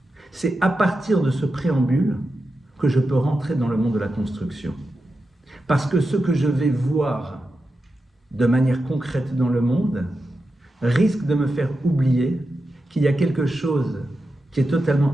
C'est à partir de ce préambule que je peux rentrer dans le monde de la construction. Parce que ce que je vais voir de manière concrète dans le monde risque de me faire oublier qu'il y a quelque chose qui est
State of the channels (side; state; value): both; normal; correlation 0.90